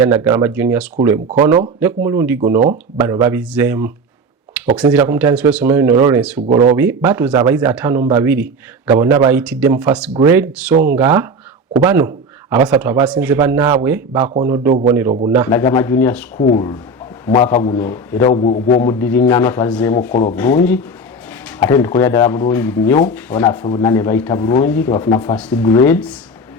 Naggalama Junior School e Mukono ne ku mulundi guno bano babizzeemu. Okusinziira ku mutandisi w'essomero lino Lawrence Lugolobi baatuuza abayizi 52 nga bonna bayitidde mu first grade so nga ku bano abasatu abasinze bannaabwe bakoonodde obubonero 4. Naggalama Junior School mwaka guno era ogw'omuddiringano twazzeemu okukola obulungi ate ntukolera ddala bulungi nnyo abaana baffe bonna ne bayita bulungi tebafuna first grades.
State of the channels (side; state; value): both; normal; correlation 0.24